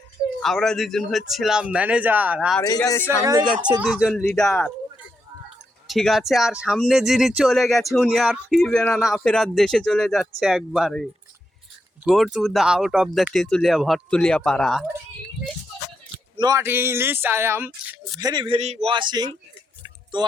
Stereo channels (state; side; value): normal; both; correlation 0.82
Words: আমরা দুজন হচ্ছিলাম ম্যানেজার, আর এই যে সামনে যাচ্ছে দুজন লিডার, ঠিক আছে? আর সামনে যিনি চলে গেছে উনি আর ফিরবে না, না ফেরার দেশে চলে যাচ্ছে একবারে। Go to the out of the তেঁতুলিয়া ভরতুলিয়া পাড়া। Not English, I am very washing. তো